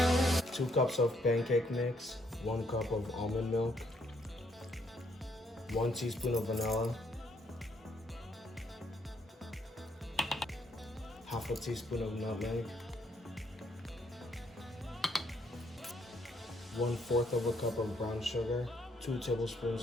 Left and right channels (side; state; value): both; normal; correlation 0.71